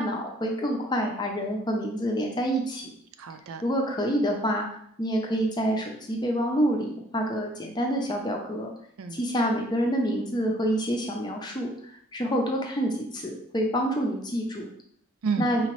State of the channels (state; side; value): normal; both; correlation 0.61